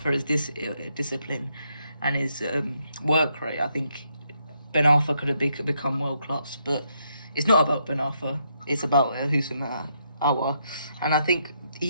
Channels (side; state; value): both; inverted; correlation -0.77